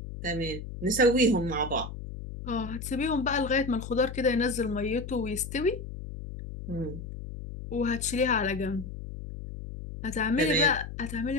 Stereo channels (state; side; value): noise; left; hum, 9 dB below the sound